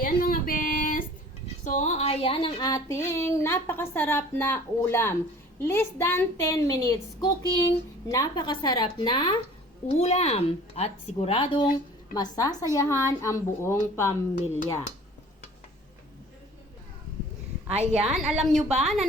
mga best. So, ayan ang ating napakasarap na ulam. Less than 10 minutes cooking, napakasarap na ulam. At siguradong masasayahan ang buong pamilya. Ayan, alam nyo ba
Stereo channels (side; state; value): both; normal; correlation 0.48